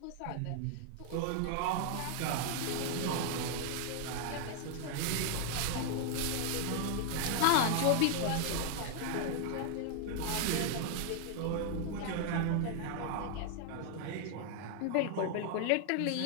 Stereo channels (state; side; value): different; both; correlation 0.00